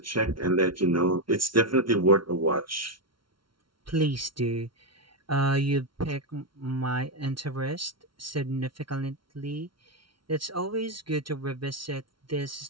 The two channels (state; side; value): late; left; 0.74 ms